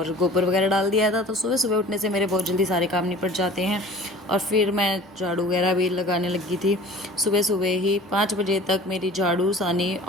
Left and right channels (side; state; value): right; noise; hum, 28 dB below the sound